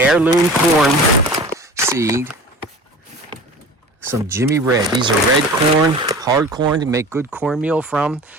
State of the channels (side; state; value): both; normal; correlation 0.39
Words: corn seed. Some Jimmy Red. These are red corn, hard corn to make good cornmeal from.